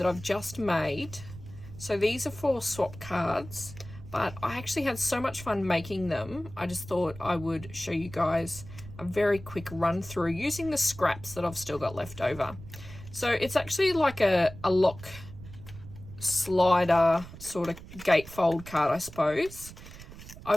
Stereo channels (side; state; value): right; noise; rumble, 15 dB below the sound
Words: I've just made. So these are 4 swap cards, but I actually had so much fun making them. I just thought I would show you guys a very quick run through using the scraps that I've still got left over. So it's actually like a lock slider sort of gatefold card, I suppose.